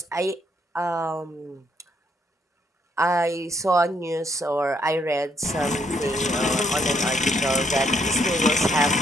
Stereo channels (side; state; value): both; normal; correlation 0.72